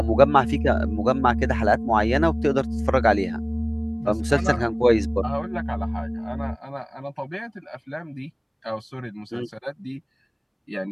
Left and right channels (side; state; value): both; identical; correlation 1.00